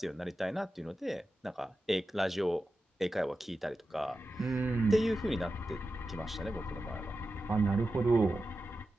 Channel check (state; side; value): normal; both; correlation 0.92